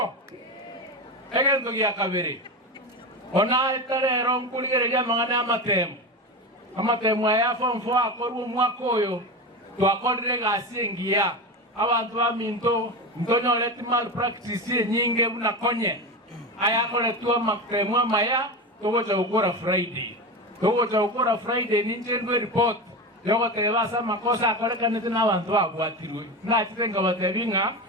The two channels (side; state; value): both; normal; correlation 0.22